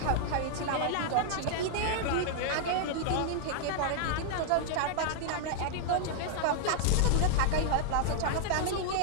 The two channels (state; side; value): different; both; correlation -0.01